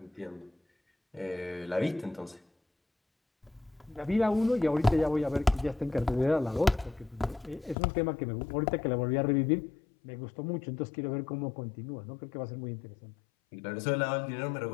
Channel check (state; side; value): drops out; right; at 7.8 s